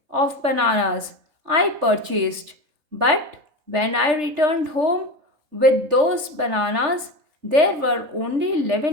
of bananas I purchased, but when I returned home with those bananas, there were only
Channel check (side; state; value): left; late; 3.3 ms